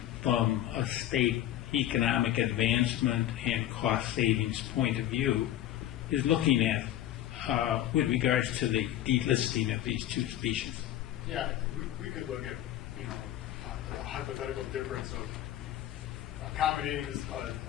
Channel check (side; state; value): right; quieter; 12.8 dB